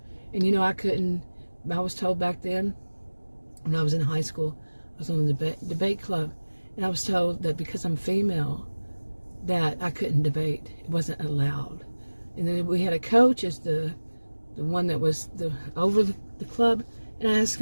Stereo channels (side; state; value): both; inverted; correlation -1.00